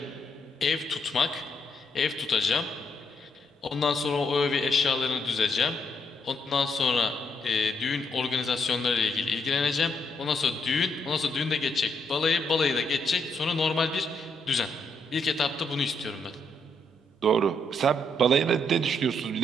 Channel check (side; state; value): both; normal; correlation 0.76